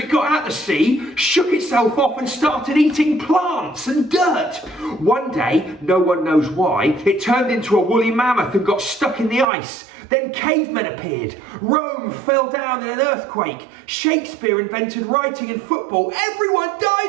got out the sea, shook itself off and started eating plants and dirt. One day, no one knows why, it turned into a woolly mammoth and got stuck in the ice. Then cavemen appeared. Rome fell down in an earthquake. Shakespeare invented writing and football. Everyone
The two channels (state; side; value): drops out; left; at 9.5 s